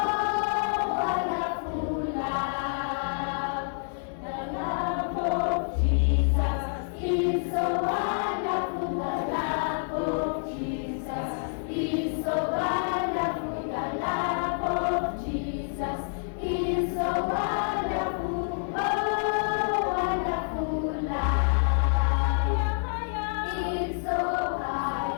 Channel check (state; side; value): silent; right; 59 dB below the other